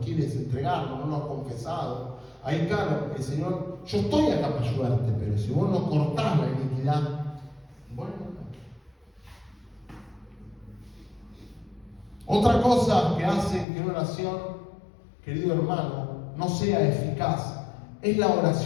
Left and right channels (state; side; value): drops out; right; at 13.7 s